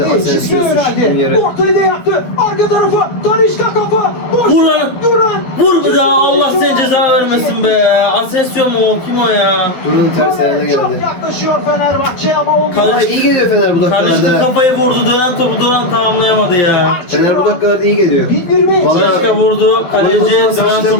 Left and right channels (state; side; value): late; right; 12 ms